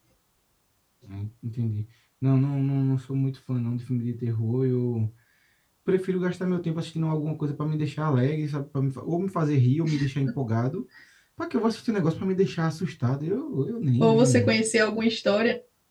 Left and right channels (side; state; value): both; identical; correlation 1.00